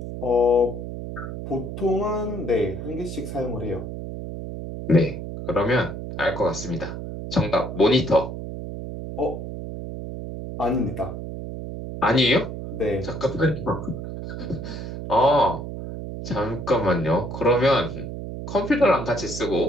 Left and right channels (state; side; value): noise; right; hum, 8 dB below the sound